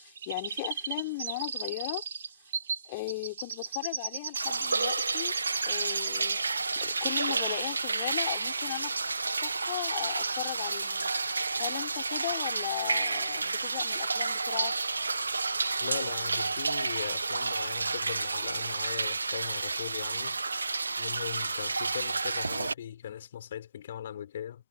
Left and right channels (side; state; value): both; inverted; correlation -0.80